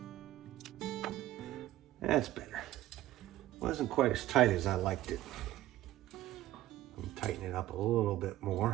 That's better. Wasn't quite as tight as I liked it. I'm tightening it up a little bit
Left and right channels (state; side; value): quieter; left; 14.9 dB